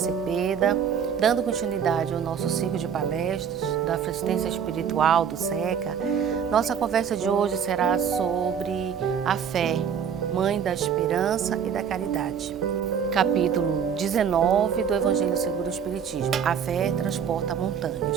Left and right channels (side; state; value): left; quieter; 7.6 dB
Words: dando continuidade ao nosso ciclo de palestras da Assistência Espiritual do SECA. Nossa conversa de hoje será sobre a fé, mãe da esperança e da caridade. Capítulo 19 do Evangelho segundo o Espiritismo. A fé transporta